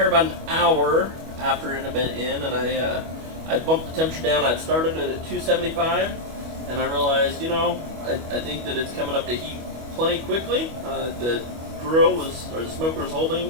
about an hour after it had been in, and I bumped the temperature down. I'd started it at 275, and I realized, I think that it's coming up to heat plenty quickly. The the smoker was holding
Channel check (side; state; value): left; late; 25 ms